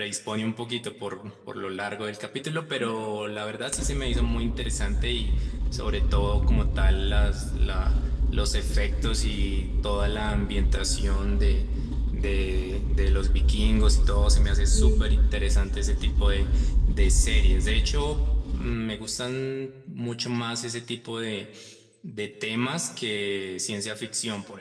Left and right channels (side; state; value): both; identical; correlation 1.00